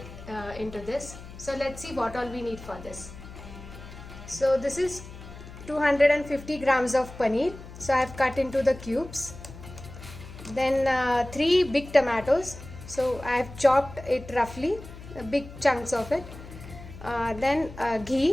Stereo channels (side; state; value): left; noise; hum, 15 dB below the sound